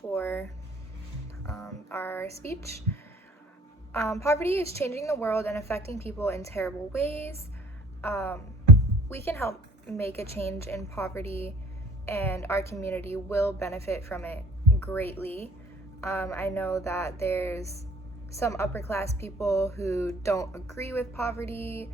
our speech. Poverty is changing the world and affecting people in terrible ways. We can help make a change in poverty, and our community will benefit from it greatly. I know that there's some upper class people who don't agree with poverty.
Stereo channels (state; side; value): normal; both; correlation 0.51